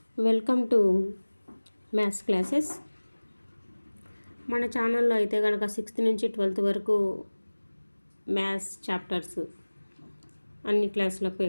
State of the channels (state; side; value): inverted; both; correlation -1.00